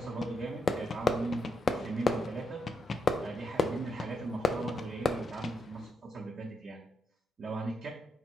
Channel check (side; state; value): both; normal; correlation 0.81